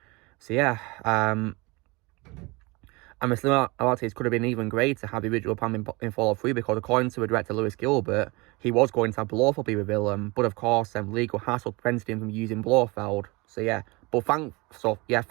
So yeah, and the similarities could have been even greater had the original plan been followed through because according to the director Lewis Gilbert, he was going to have Blofeld be the villain, but of course legal hassle prevented him from using Blofeld. So yeah,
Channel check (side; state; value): left; quieter; 25.4 dB